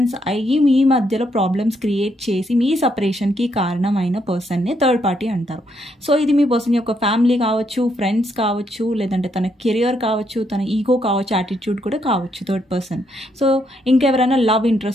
అయ్యి మీ మధ్యలో ప్రాబ్లమ్స్ క్రియేట్ చేసి మీ సపరేషన్కి కారణమైన పర్సన్నే థర్డ్ పార్టీ అంటారు. సో ఇది మీ పర్సన్ యొక్క ఫ్యామిలీ కావచ్చు, ఫ్రెండ్స్ కావచ్చు, లేదంటే తన కెరియర్ కావచ్చు, తన ఈగో కావచ్చు, యాటిట్యూడ్ కూడా కావచ్చు థర్డ్ పర్సన్. సో ఇంకెవరైనా లవ్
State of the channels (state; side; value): normal; both; correlation 0.75